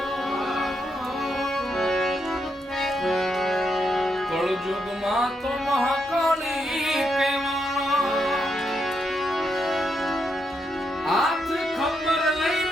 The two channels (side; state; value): both; normal; correlation 0.80